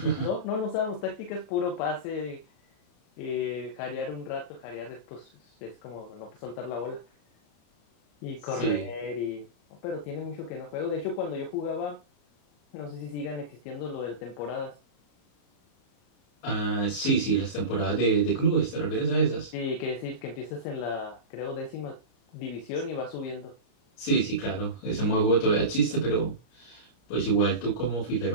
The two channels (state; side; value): late; right; 34 ms